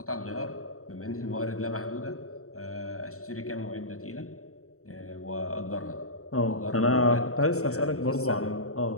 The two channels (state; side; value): late; right; 0.64 ms